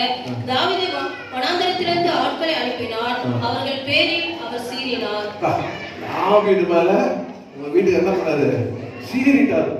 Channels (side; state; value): both; identical; correlation 1.00